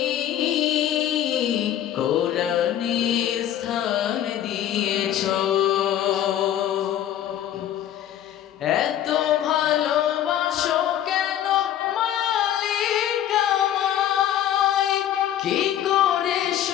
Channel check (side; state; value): right; quieter; 11.2 dB